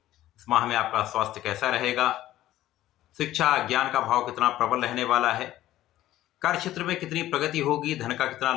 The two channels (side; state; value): right; quieter; 14.3 dB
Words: इस माह में आपका स्वास्थ्य कैसा रहेगा, शिक्षा ज्ञान का भाव कितना प्रबल रहने वाला है, कार्य क्षेत्र में कितनी प्रगति होगी, धन का कितना